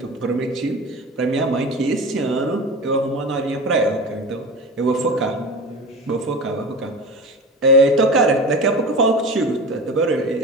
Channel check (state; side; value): normal; both; correlation 0.31